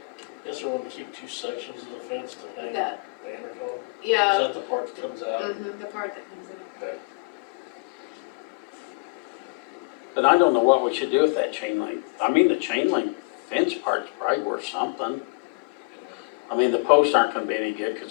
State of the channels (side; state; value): right; quieter; 32.7 dB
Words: Guess we're gonna keep 2 sections of the fence to hang That, banners on. Is yeah, that the part that comes out? the part that comes in. Okay. But I don't know what we should do with that chain link. I mean, the chain link fence part's probably worth something. I mean, the posts aren't gonna be any good, cause